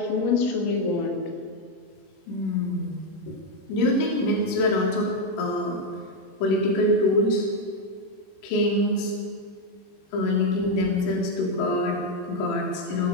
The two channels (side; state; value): right; late; 21 ms